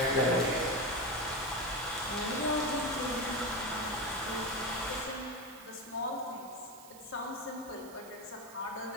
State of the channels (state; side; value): noise; right; hiss, 19 dB below the sound